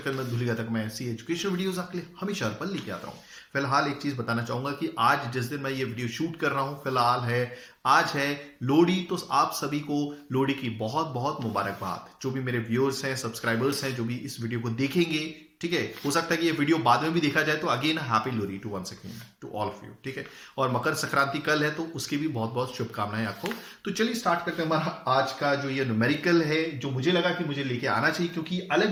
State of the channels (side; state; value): both; identical; correlation 1.00